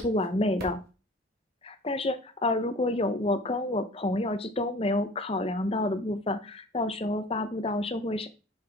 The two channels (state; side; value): normal; both; correlation 0.45